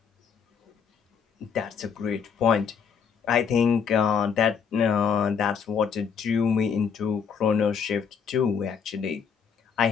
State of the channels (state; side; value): quieter; right; 6.7 dB